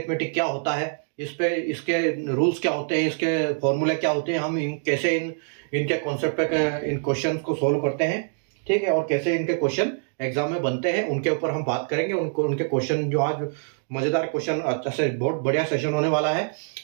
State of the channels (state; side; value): silent; left; 62 dB below the other